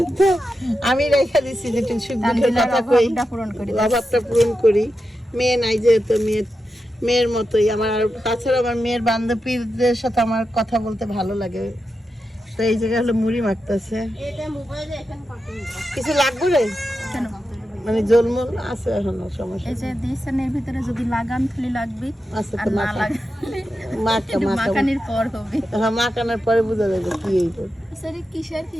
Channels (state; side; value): normal; both; correlation 0.89